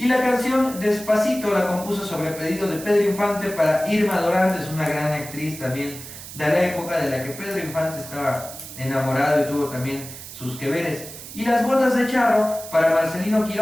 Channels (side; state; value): right; noise; hiss, 13 dB below the sound